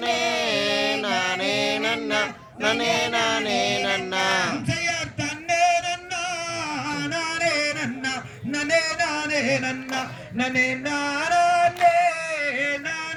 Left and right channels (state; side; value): identical; both; correlation 1.00